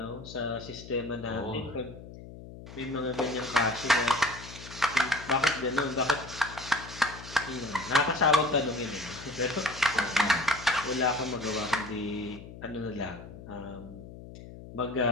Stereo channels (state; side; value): noise; left; hum, 15 dB below the sound